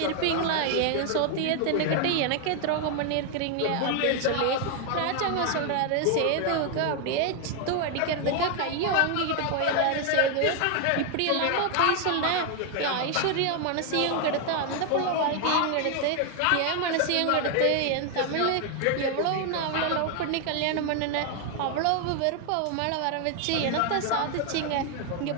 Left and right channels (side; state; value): both; different; correlation 0.00